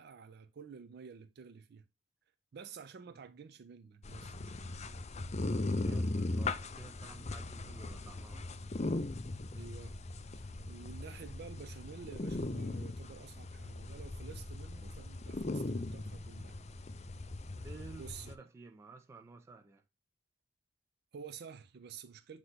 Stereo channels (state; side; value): normal; both; correlation 0.72